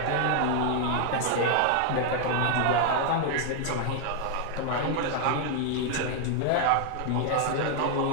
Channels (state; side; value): different; both; correlation 0.00